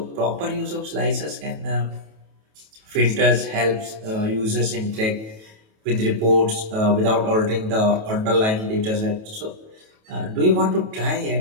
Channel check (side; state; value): left; late; 28 ms